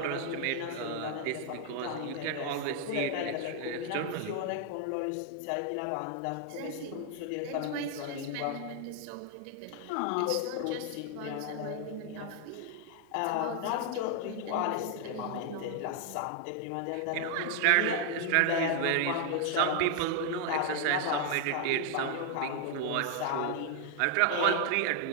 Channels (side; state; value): both; different; correlation 0.00